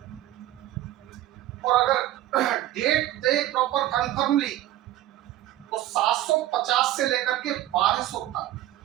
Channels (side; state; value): left; quieter; 14.1 dB